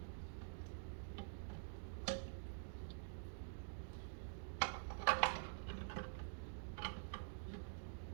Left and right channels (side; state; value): left; silent; digital silence